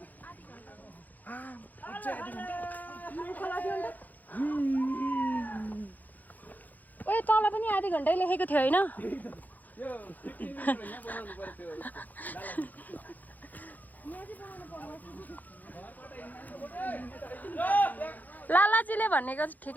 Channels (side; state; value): right; late; 0.082 ms